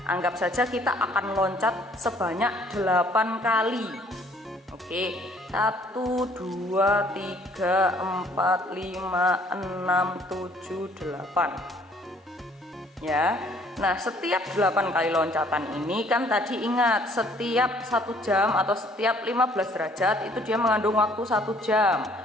anggap saja kita akan loncat sebanyak 8 kali. Oke, 1, 2, 3, 4, 5, 6, 7, 8. Ya, nah setiap 8 kali loncatan ini kan tadi ingat, setiap 1 jam atau setiap 15 derajat itu dia mengandung waktu 1 jam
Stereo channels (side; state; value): both; normal; correlation 0.60